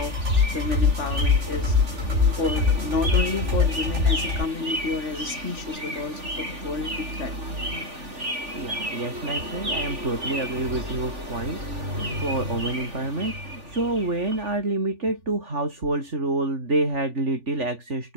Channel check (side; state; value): left; late; 3.4 ms